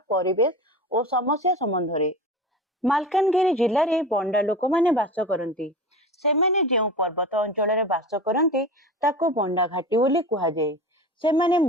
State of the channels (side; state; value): both; normal; correlation 0.31